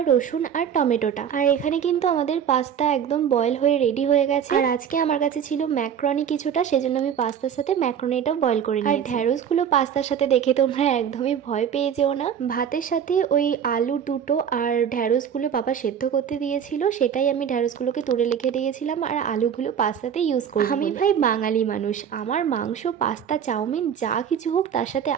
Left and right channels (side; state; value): left; quieter; 8.4 dB